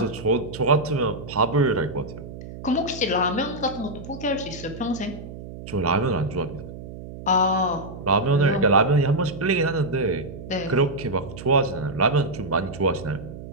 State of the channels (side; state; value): right; noise; hum, 12 dB below the sound